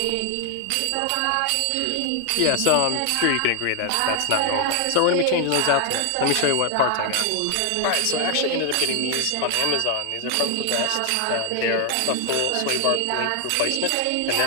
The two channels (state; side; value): different; both; correlation 0.00